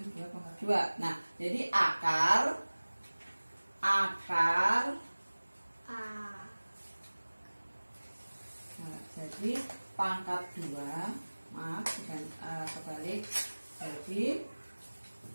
2 pangkat 2. Nah, jadi akar jadi pangkat 2, maaf bukan kebalik, jadi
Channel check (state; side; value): inverted; both; correlation -1.00